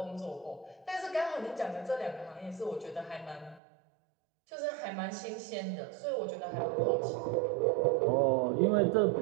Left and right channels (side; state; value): left; drops out; at 3.6 s